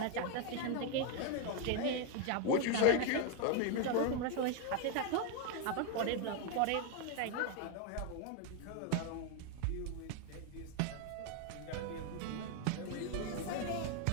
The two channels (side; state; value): both; different; correlation 0.01